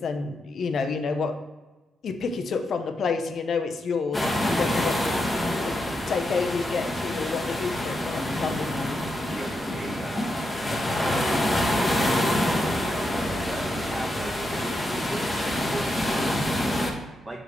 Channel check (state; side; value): normal; both; correlation 0.85